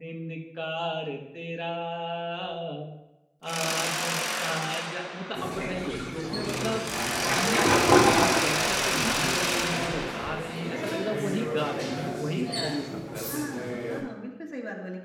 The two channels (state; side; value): identical; both; correlation 1.00